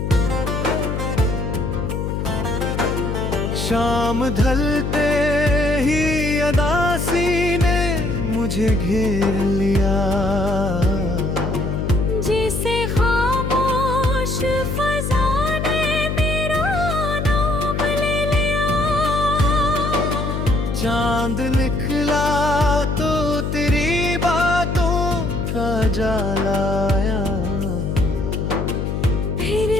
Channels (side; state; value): left; noise; hum, 2 dB below the sound